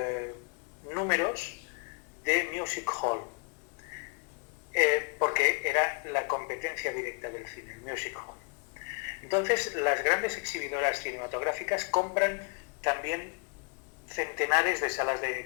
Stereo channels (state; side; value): quieter; right; 35.0 dB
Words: números de music hall, porque era la competencia directa del cine, el music hall. Entonces, las grandes exhibidoras cinematográficas compran también centenares de salas de